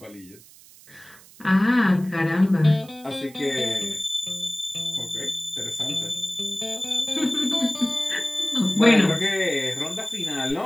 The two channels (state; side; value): noise; right; hiss, 23 dB below the sound